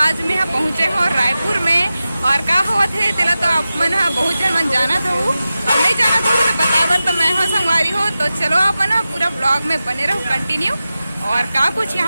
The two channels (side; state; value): both; inverted; correlation -0.94